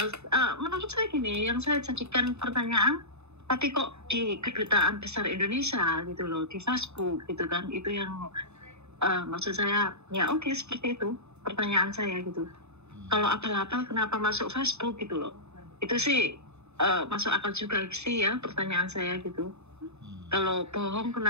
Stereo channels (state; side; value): late; left; 0.81 ms